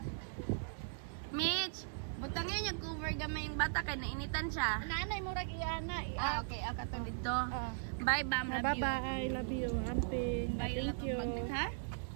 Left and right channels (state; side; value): silent; left; digital silence